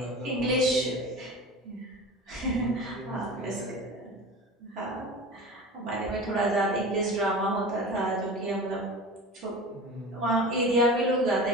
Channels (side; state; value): both; normal; correlation 0.34